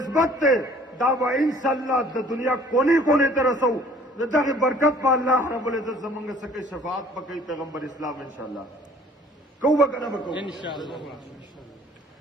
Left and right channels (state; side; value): normal; both; correlation 0.54